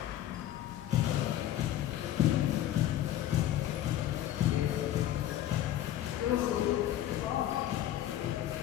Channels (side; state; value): right; quieter; 12.5 dB